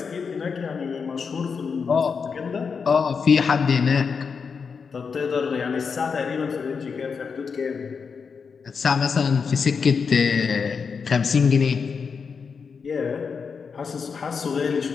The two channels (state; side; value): quieter; right; 5.7 dB